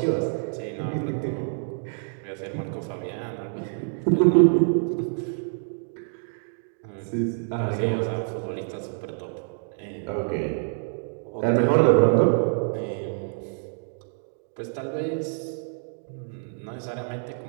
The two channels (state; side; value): silent; left; digital silence